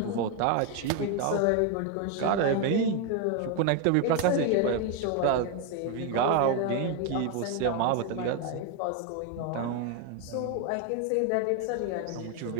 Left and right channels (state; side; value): different; both; correlation 0.01